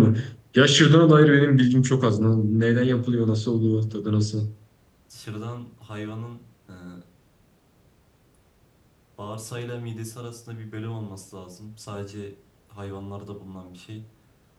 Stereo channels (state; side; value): identical; both; correlation 1.00